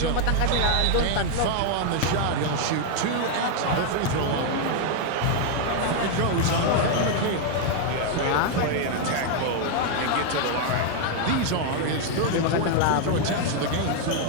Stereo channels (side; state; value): both; different; correlation 0.00